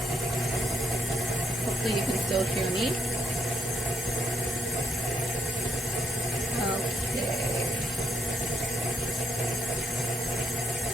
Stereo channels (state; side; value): normal; both; correlation 0.76